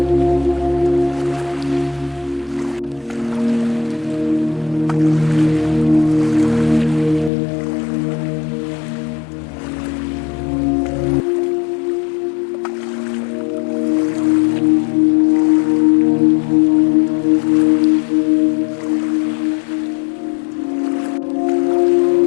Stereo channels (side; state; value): right; drops out; at 7.3 s